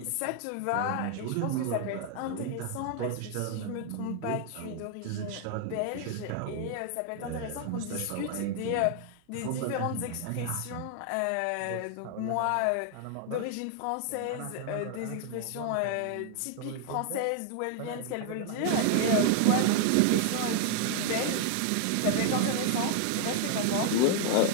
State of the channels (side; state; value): both; different; correlation 0.00